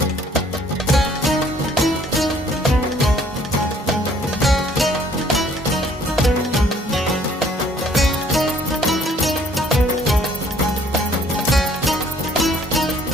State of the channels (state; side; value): normal; both; correlation 0.60